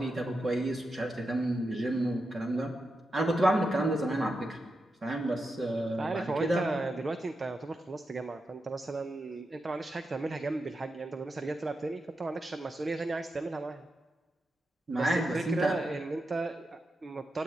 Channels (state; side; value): normal; both; correlation 0.88